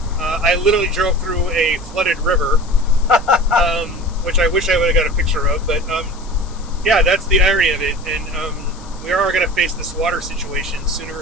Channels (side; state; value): left; noise; hiss, 22 dB below the sound